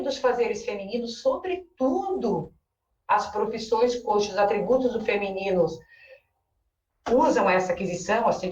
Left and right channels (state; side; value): identical; both; correlation 1.00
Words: dos fazeres femininos, sobretudo as profissões cujos atributos do feminino usam essa aquisição,